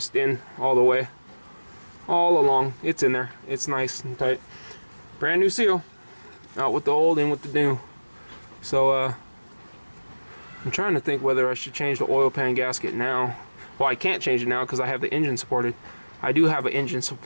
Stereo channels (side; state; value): both; inverted; correlation -1.00